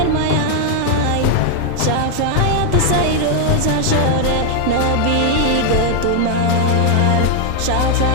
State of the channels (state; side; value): different; both; correlation 0.00